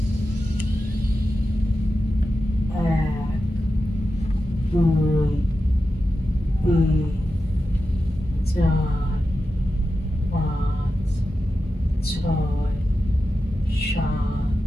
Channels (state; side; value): normal; both; correlation 0.91